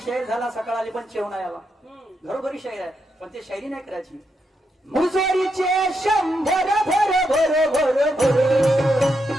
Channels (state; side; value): normal; both; correlation 0.82